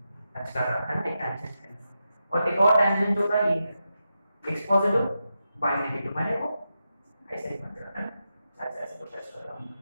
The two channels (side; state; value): both; inverted; correlation -0.88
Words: टच कर रहा है ना, एक टैंजेंट है, और एक और टैंजेंट होता है ये है x पॉजिटिव y नेगेटिव, माने वो ऐसे ही बन रहा है ना, ऐसे ऐसे कुछ टच कर रहा हूं,